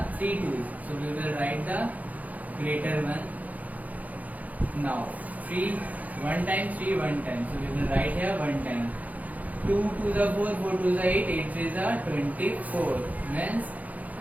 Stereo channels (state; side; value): late; left; 0.076 ms